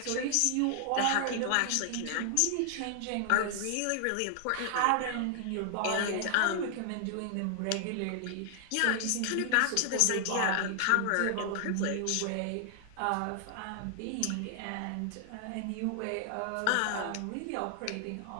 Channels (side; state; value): both; different; correlation 0.00